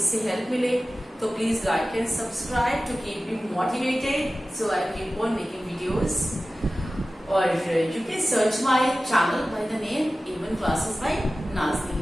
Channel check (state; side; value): normal; both; correlation 0.96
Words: हेल्प मिले तो please like and subscribe to keep me motivated so I keep on making videos. और you can search my channel by the name A1 Classes by